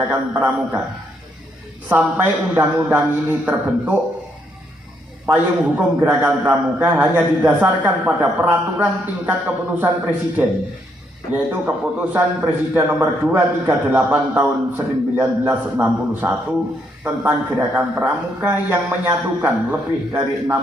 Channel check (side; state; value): both; normal; correlation 0.74